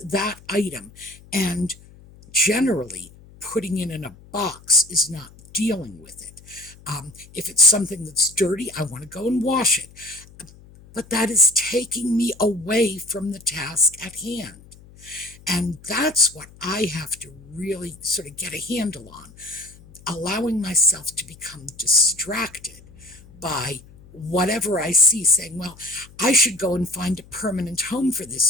that item, and generally putting it in a box is not dealing with it. If it's something that's dirty, I want to go and wash it. But that is taking me away from the task at hand. And that's what I have to really sort of get a handle on, allowing myself to become distracted by whatever I see, saying, well, I should go and find a permanent home for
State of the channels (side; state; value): left; noise; hum, 23 dB below the sound